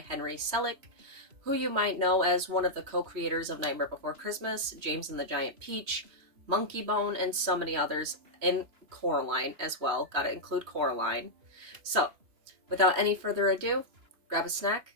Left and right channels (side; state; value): left; late; 3.0 ms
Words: Selick, who you might know as one of the co-creators of Nightmare Before Christmas, James and the Giant Peach, Monkey Bone, and so many others, and Coraline as well. Gotta include Coraline. So, without any further ado, grab a